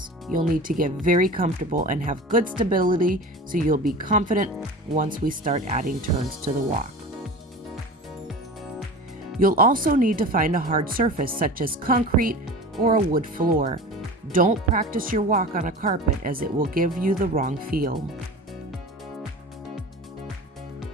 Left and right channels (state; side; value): normal; both; correlation 0.35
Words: You'll need to get very comfortable and have good stability so you'll be confident once we start adding turns to the walk. You'll also need to find a hard surface such as concrete or a wood floor. Don't practice your walk on a carpet as it will give you the wrong feel.